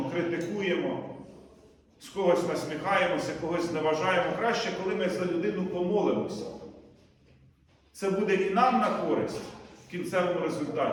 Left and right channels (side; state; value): both; identical; correlation 1.00